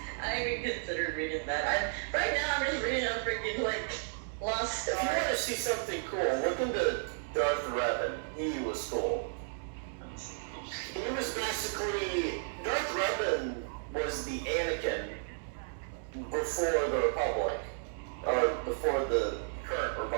I even considered reading that. Right now I'm just reading a freaking like Lost If you want to Stars. see something cool, look into Darth Revan. He was cool. He was basically, Darth Revan was the Anakin before the Republic, or before the current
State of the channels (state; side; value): silent; left; digital silence